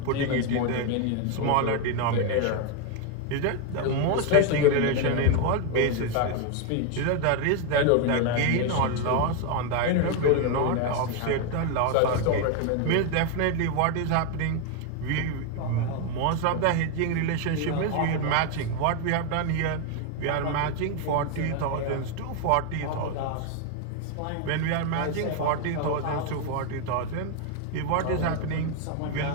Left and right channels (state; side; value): different; both; correlation 0.01